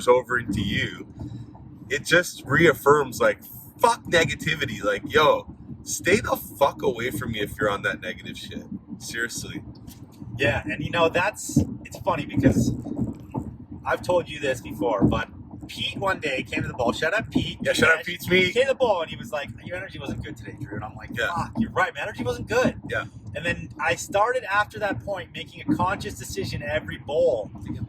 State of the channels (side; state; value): both; identical; correlation 1.00